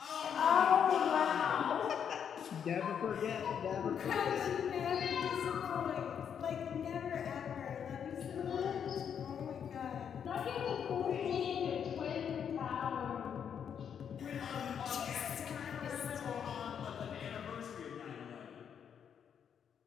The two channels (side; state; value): right; quieter; 8.0 dB